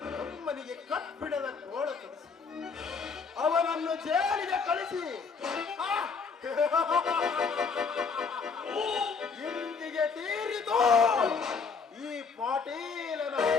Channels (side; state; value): right; quieter; 5.2 dB